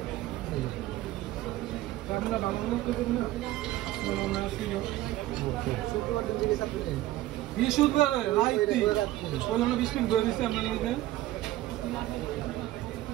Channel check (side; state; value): left; quieter; 15.9 dB